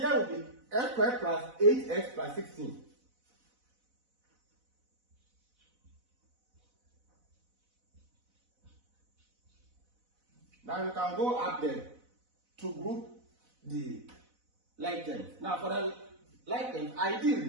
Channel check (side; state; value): left; late; 4.0 ms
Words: will be x squared plus 8x plus 16. Now we can go up there to group the like terms. Now for the like terms,